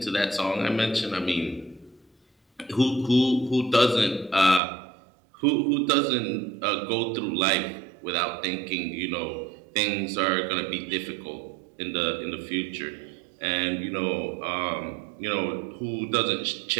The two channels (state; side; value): drops out; left; at 4.6 s